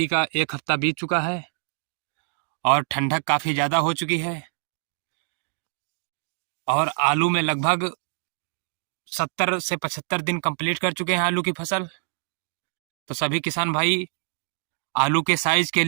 का एक हफ्ता बीत चुका है और ठंडक काफ़ी ज़्यादा हो चुकी है और आलू में लगभग 70 से 75 दिन कंप्लीट कर चुके हैं आलू की फसल। तो सभी किसान भाई आलू के साइज के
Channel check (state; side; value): silent; left; digital silence